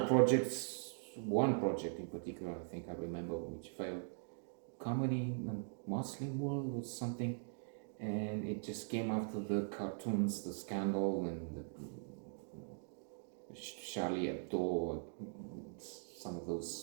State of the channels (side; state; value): left; silent; digital silence